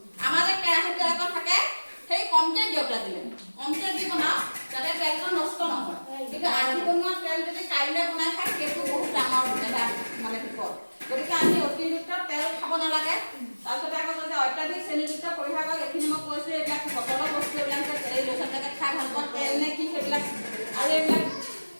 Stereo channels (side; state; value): both; inverted; correlation -1.00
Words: আমাৰ যে কেৰাহী তেল এটা থাকে, সেই কমকে দিয়ক, লাগিলে কমকে দি বনাওক যাতে তেলটো নষ্ট নহয়। কিন্তু আজি বনোৱা তেল যদি কাইলৈ বনাই খায় সেইটো বহুত ডাঙৰ এটা মানে বিপদ। গতিকে আমি অতিৰিক্ত তেল খাব নালাগে। তাৰপিছতে আকৌ যে অত্যাধিক চেনিযুক্ত পৰিহাৰ কৰক। এইখিনি মই কৈছোঁ। এইবিলাক বটলৰ বস্তু, এইবিলাক এই ল'ৰা ছোৱালীবিলাকে খাই ভাল পোৱা তেল নে কি সেইবিলাক, আৰু এইবিলাক